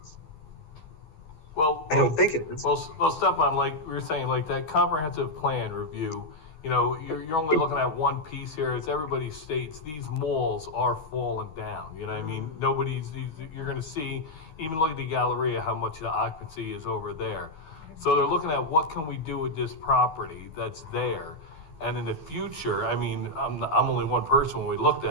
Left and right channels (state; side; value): late; right; 13 ms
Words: Well, I don't think it is. Well, Stefan, like we were saying, like that comprehensive plan review, you're only looking at one piece here. As everybody states, these malls are falling down. You know what I mean? You're going to see, even look at the Galleria, how much the occupancy is over there. So they're looking at what can we do with this property that's there. And in the future, I mean, I'm only one person when we looked